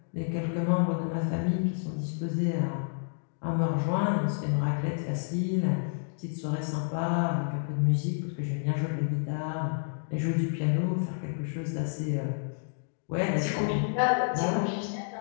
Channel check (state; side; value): silent; right; digital silence